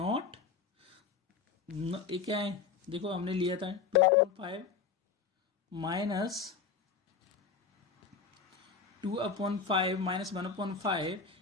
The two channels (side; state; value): right; quieter; 5.9 dB